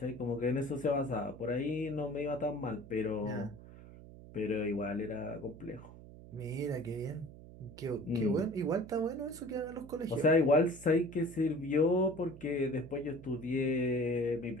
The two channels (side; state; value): right; noise; hum, 17 dB below the sound